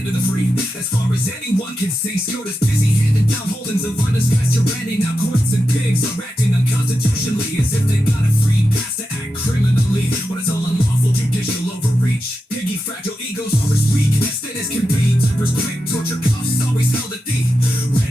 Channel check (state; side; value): normal; both; correlation 0.89